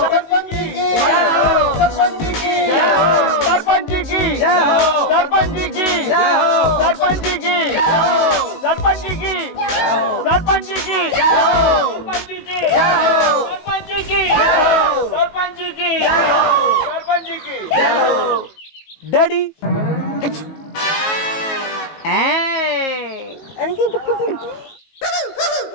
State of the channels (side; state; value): right; late; 19 ms